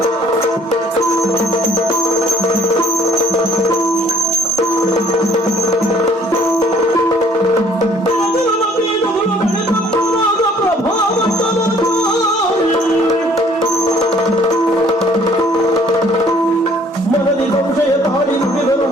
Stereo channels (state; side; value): normal; both; correlation 0.59